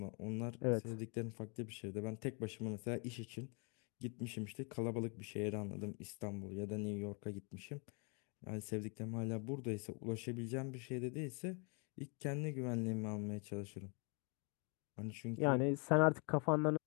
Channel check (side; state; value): right; quieter; 36.0 dB